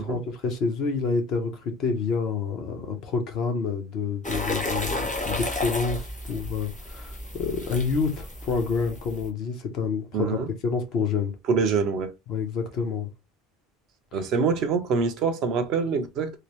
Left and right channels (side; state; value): both; normal; correlation 0.39